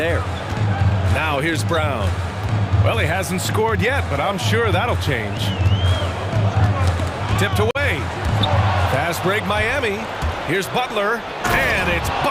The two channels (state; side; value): identical; both; correlation 1.00